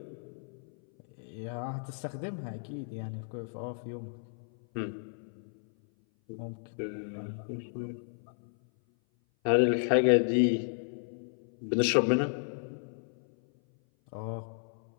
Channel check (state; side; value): silent; right; 56 dB below the other